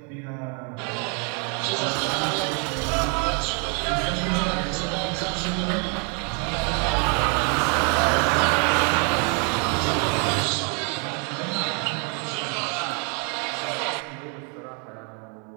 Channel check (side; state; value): left; quieter; 37.2 dB